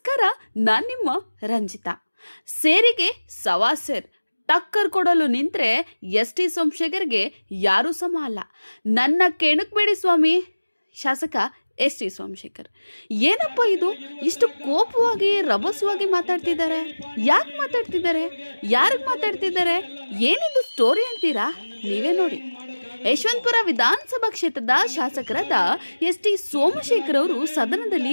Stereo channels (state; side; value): inverted; both; correlation -1.00